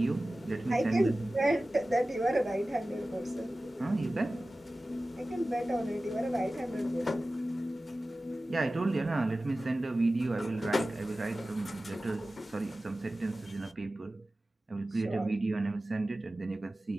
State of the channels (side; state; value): both; normal; correlation 0.96